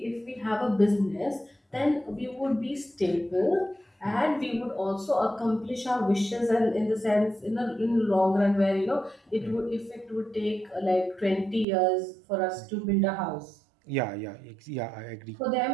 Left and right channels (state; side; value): drops out; left; at 11.7 s